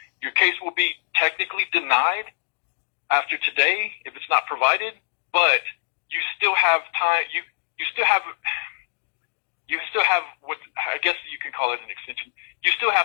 Your case will be technically denied after today if it's not provided, but you still have time. You still have what I guess you can call it an extension. You still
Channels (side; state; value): right; silent; digital silence